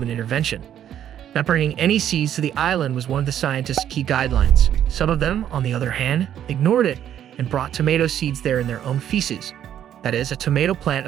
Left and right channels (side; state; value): left; quieter; 10.3 dB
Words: intervention. Not bringing any seeds to the island was one of the scientists' key guidelines. Some of them, on the other hand, ignored it and brought tomato seeds there in their own feces. That is, a tomato plant